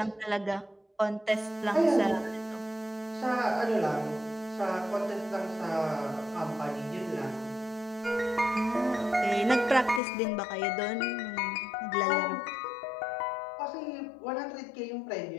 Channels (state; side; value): drops out; right; at 10.0 s